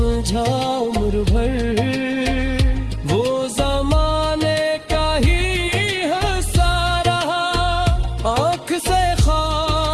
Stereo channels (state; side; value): identical; both; correlation 1.00